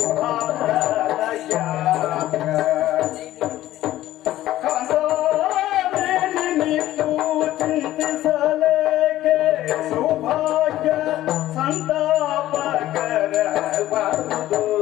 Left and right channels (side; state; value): right; quieter; 14.4 dB